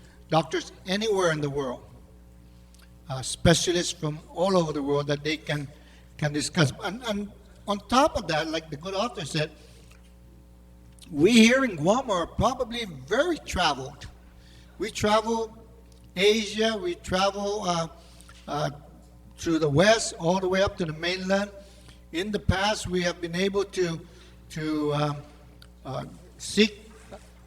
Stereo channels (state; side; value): identical; both; correlation 1.00